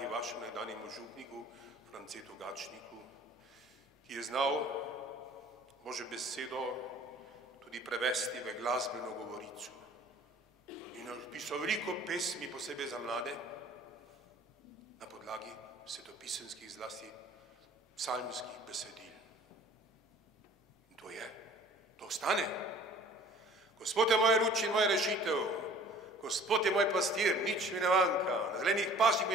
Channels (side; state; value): both; normal; correlation 0.51